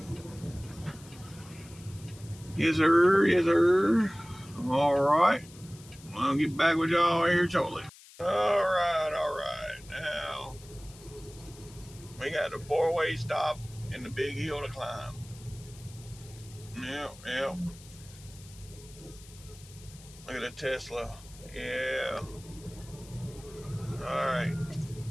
Yes, sir. All right. I'll get back with y'all here shortly. All right. Now, we got a 4-way stop and the big hill to climb. Yep. Look at a Tesla. Yeah. All right.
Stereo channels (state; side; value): noise; left; hiss, 21 dB below the sound